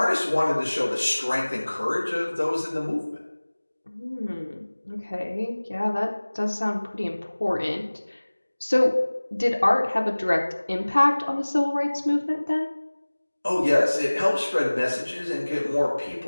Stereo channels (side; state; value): both; inverted; correlation -1.00